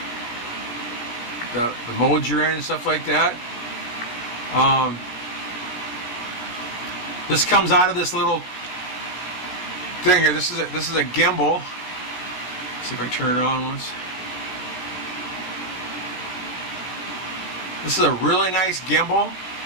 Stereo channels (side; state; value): right; late; 17 ms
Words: modes you're in and stuff like that. This comes out of this little thing here. This is a gimbal. Let's see if I turn it on once. This is a really nice gimbal.